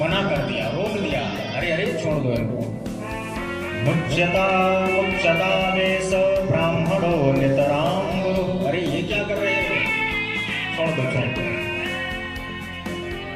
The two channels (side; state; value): both; identical; correlation 1.00